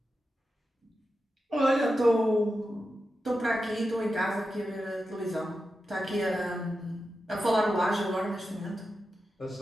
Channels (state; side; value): normal; both; correlation 0.90